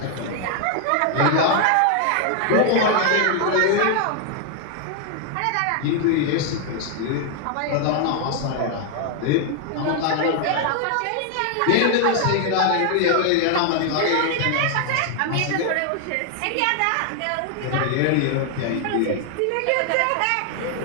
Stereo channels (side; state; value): both; different; correlation 0.00